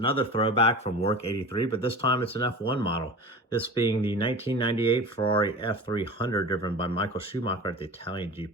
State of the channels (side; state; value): both; normal; correlation 0.35